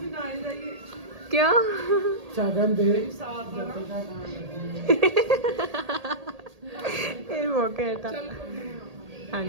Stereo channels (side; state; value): left; late; 1.8 ms